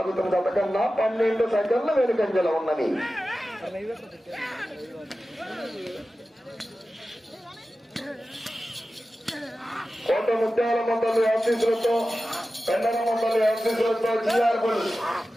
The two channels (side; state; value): both; normal; correlation 0.94